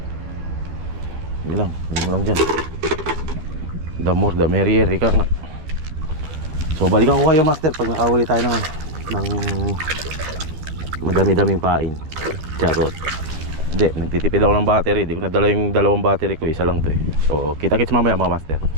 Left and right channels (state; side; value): late; left; 13 ms